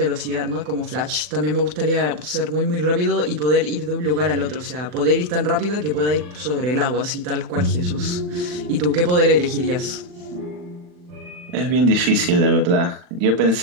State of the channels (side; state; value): left; late; 40 ms